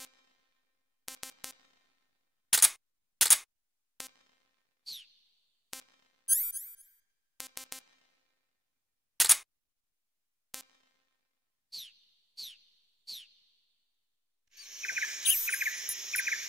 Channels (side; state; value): both; normal; correlation 0.91